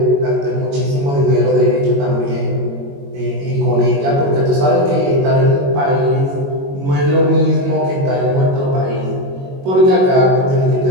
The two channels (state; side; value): late; left; 22 ms